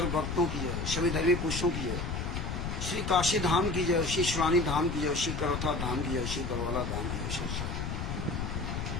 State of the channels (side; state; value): left; noise; rumble, 3 dB below the sound